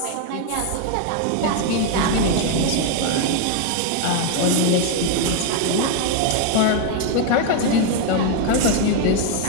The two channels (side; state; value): both; different; correlation 0.01